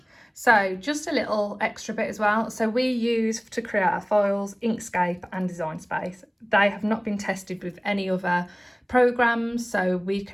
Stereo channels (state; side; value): identical; both; correlation 1.00